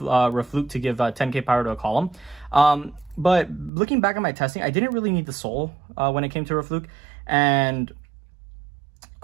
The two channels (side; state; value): left; drops out; at 3.7 s